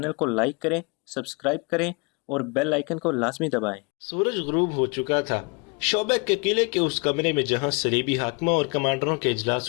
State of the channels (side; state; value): right; quieter; 31.1 dB